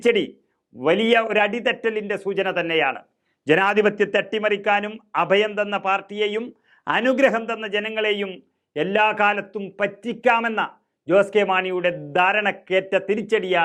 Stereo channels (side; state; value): both; identical; correlation 1.00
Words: വലിയ ഒരു അടിതെറ്റലിൻ്റെ സൂചന തന്നെയാണ്. ജനാധിപത്യത്തെ അട്ടിമറിക്കാനും അഭയം തന്ന പാർട്ടിയെയും അനുഗ്രഹം തന്ന ജനങ്ങളെയും എല്ലാ കാലത്തും പറ്റിക്കാമെന്ന ജോസ് കെ മാണിയുടെ ധാരണക്കേറ്റ